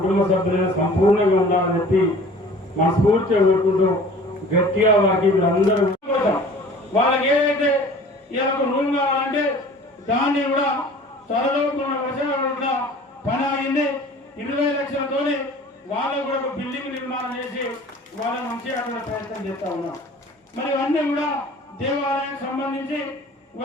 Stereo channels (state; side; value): normal; both; correlation 0.46